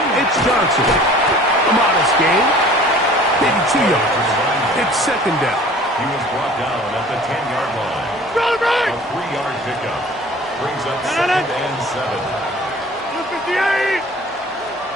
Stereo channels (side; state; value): both; normal; correlation 0.47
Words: it's Johnson. A modest gain. Maybe 2 yards. It's 2nd down. He was brought down at the 10-yard line. A 3-yard pickup. Brings up 2nd and 7. 58.